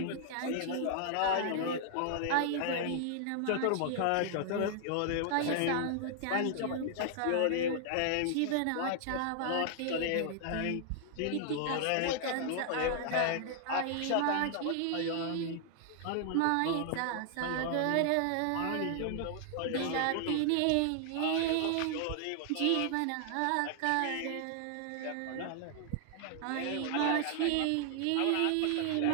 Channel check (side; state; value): both; different; correlation 0.00